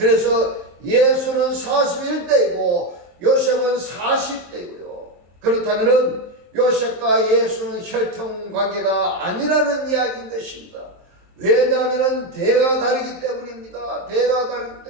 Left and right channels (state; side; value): late; left; 23 ms